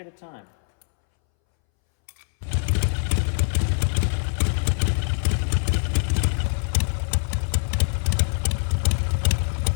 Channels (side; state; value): right; silent; 63 dB below the other